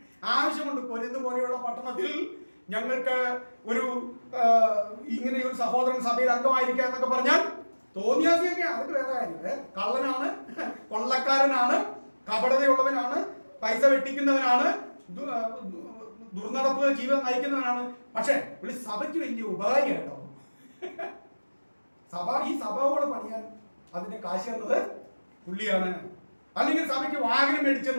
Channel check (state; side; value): inverted; both; correlation -1.00